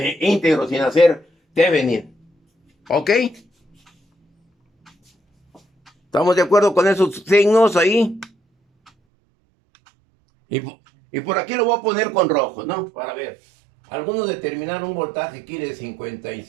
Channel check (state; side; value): drops out; left; at 8.9 s